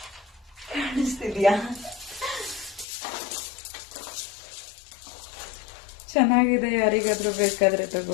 ಕಾಣಿಸ್ತಿದ್ಯಾ? ಚೆನ್ನಾಗಿದೆ, ಯಾರಿಗಾದ್ರೂ ಬೇಕಾದ್ರೆ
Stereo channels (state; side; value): drops out; right; at 2.9 s